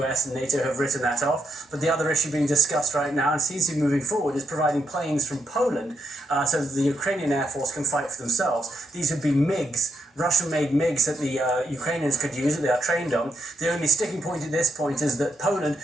and NATO have written that off, but the other issue being discussed right now and seems to be moving forward is providing planes from Poland so that the Ukrainian Air Force can fight for themselves. These would be MiGs, Russian-made MiGs that the Ukrainians could use, that they are trained on. The only sticking point at this point is that Poland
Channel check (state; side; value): normal; both; correlation 0.79